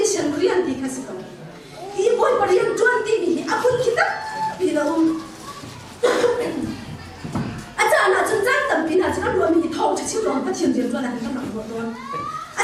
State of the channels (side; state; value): both; identical; correlation 1.00